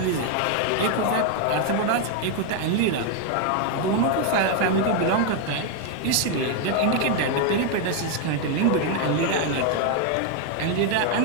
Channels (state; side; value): different; both; correlation 0.01